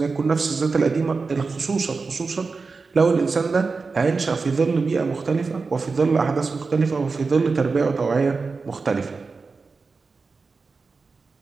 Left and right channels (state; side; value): quieter; left; 4.4 dB